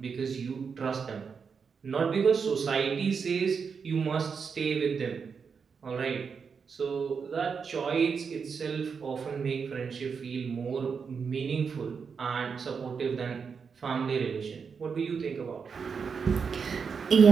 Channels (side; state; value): left; quieter; 5.9 dB